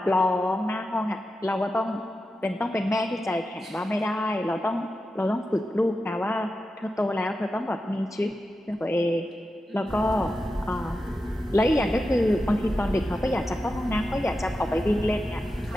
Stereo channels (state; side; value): normal; both; correlation 0.91